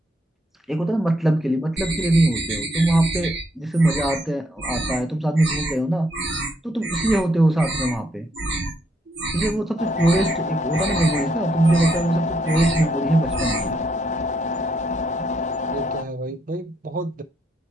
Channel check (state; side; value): normal; both; correlation 0.75